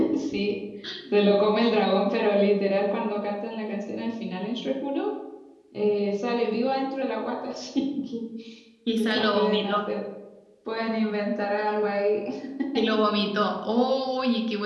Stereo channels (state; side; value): identical; both; correlation 1.00